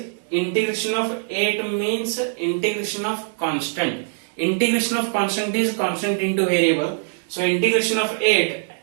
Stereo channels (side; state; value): left; silent; digital silence